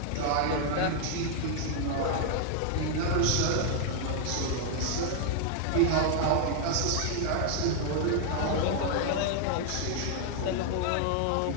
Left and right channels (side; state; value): both; different; correlation 0.00